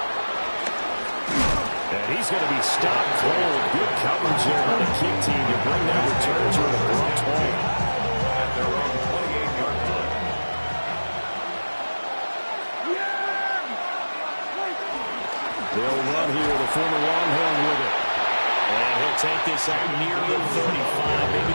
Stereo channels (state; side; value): inverted; both; correlation -1.00